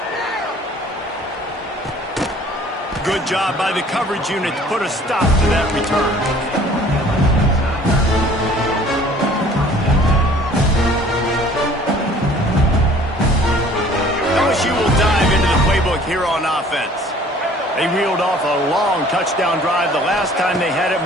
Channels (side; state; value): both; normal; correlation 0.53